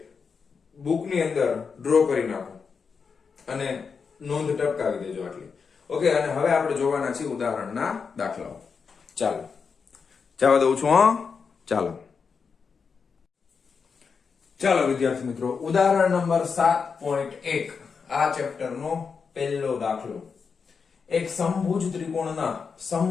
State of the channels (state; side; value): quieter; right; 5.6 dB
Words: બુકની અંદર ડ્રો કરી નાખો અને નોંધ ટપકાવી દેજો આટલી. ઓકે, અને હવે આપણે જોવાના છીએ ઉદાહરણના દાખલાઓ. ચાલો જવા દઉં છું. ચાલો વિદ્યાર્થી મિત્રો, ઉદાહરણ નંબર 7.1. આ ચેપ્ટરનો પહેલો દાખલો. એક સમભુજ ત્રિકોણના